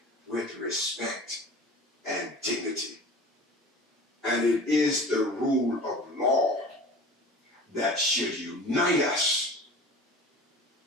with respect and dignity. And it is the rule of law that should unite us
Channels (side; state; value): both; normal; correlation 0.39